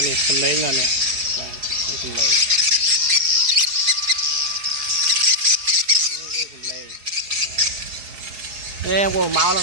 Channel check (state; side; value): late; left; 4.8 ms